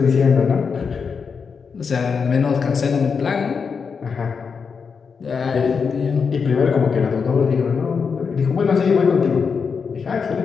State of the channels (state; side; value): quieter; right; 5.7 dB